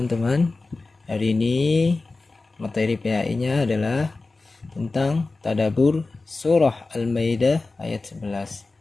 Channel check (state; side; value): quieter; right; 3.5 dB